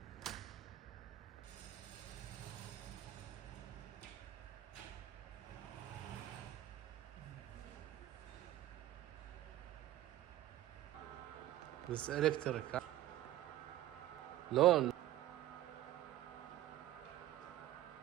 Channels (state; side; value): quieter; left; 14.1 dB